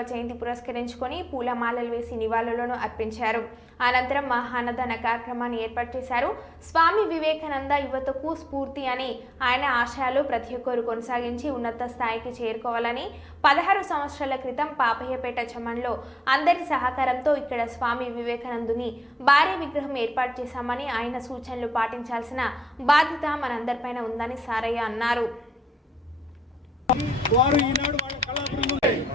జయంతి పురస్కరించుకొని పూలమాలలు వేసి నివాళులను అర్పించారు. అనంతరం మహాన్నదాన కార్యక్రమాన్ని ఏర్పాటు చేశారు. స్వామి వివేకానంద యువతకు స్ఫూర్తి అని, ఆయన ఆశయాలు ప్రతి ఒక్కరు కొనసాగించి ఉన్నత స్థాయికి చేరుకోవాలని 16 సంవత్సరాల క్రితం పాపయ్యపేట చెమన్లో అందరి సహకారంతో ఇక్కడ స్వామి వివేకానందుని భారీ విగ్రహం ఏర్పాటు చేశామని, ఆయన సూచనలు పాటించాల్సిన బాధ్యత మనందరిపైన ఉందని సారయ్య అన్నారు.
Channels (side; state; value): both; normal; correlation 0.86